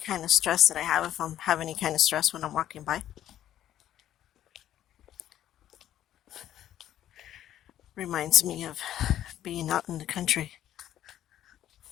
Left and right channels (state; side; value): quieter; right; 11.9 dB